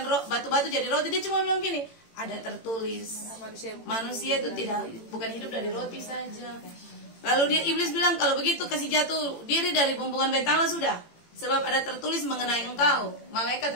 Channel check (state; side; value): late; right; 18 ms